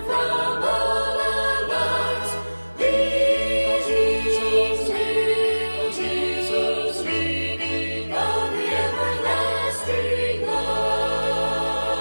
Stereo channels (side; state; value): both; inverted; correlation -1.00